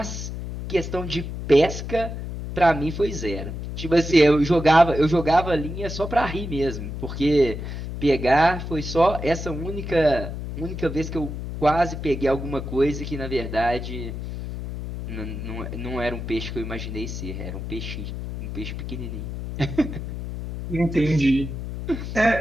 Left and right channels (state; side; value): noise; left; hum, 7 dB below the sound